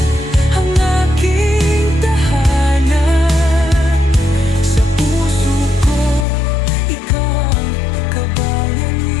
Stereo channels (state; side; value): drops out; right; at 6.2 s